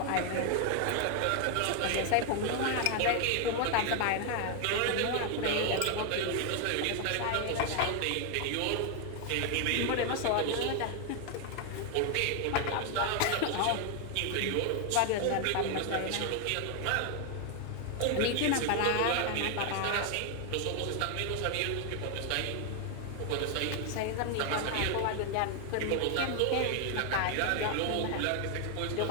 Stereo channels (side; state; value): both; different; correlation 0.01